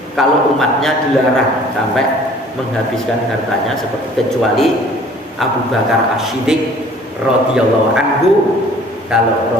kalau umatnya dilarang sampai menghabiskan hartanya seperti kecuali Abu Bakar As-Siddiq radhiyallahu anhu.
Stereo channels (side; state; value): both; normal; correlation 0.52